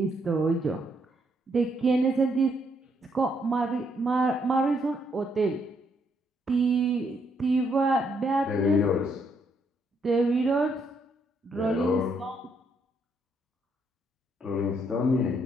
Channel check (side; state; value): both; normal; correlation 0.74